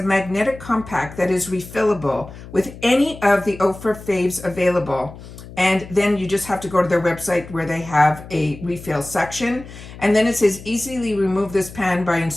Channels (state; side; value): noise; left; hum, 16 dB below the sound